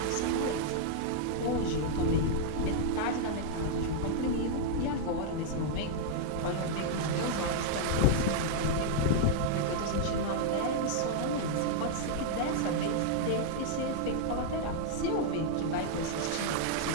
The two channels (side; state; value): both; different; correlation -0.01